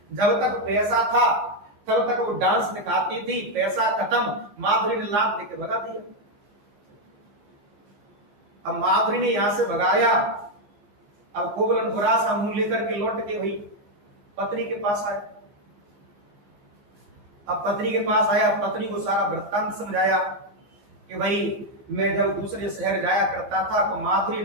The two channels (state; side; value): late; left; 15 ms